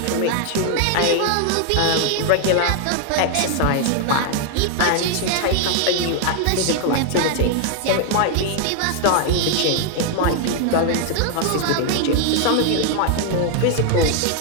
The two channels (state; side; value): different; both; correlation 0.00